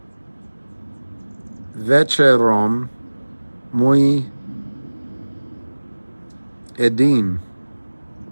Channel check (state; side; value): inverted; both; correlation -1.00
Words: Večerom, Muy Edim.